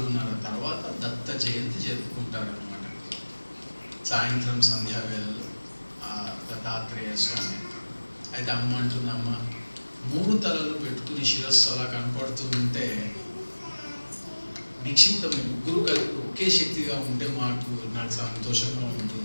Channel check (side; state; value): both; inverted; correlation -1.00